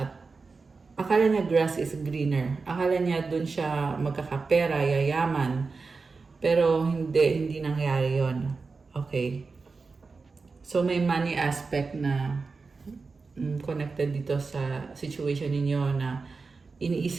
akala niya grass is greener. Akala niya dun siya magkakapera, yayaman. Pero hindi nangyari yon. Okay. So may money aspect na connected dito sa situation ninyo na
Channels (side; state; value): left; quieter; 4.3 dB